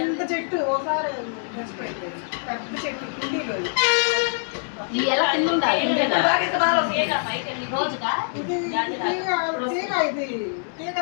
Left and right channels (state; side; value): silent; right; digital silence